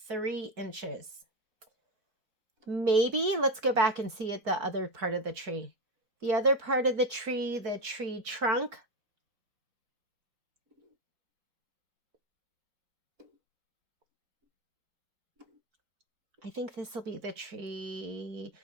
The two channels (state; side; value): late; left; 4.5 ms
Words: 3 inches. Maybe let's go back and see at the other part of the tree. The other part of the tree trunk. I think this will be the tree.